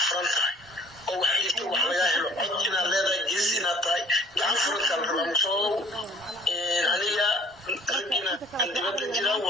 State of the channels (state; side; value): normal; both; correlation 0.55